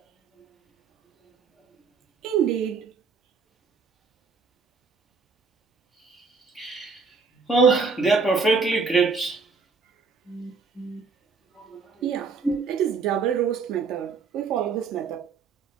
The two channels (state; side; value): quieter; left; 4.9 dB